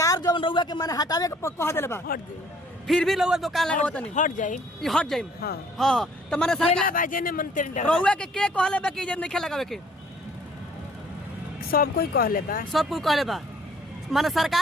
जो रउआ के माने हटावे के कह देले बा हट दे फिर भी रउआ दुकान लगावत नहीं हट जाई ई हट जाई। हां हां तो माने सरकार बाजे ने मन तेरे रउआ के कहले बा कि जे नहीं लगावे के सब कोई कहले बा सब कोई कहले बा माने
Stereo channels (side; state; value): both; normal; correlation 0.58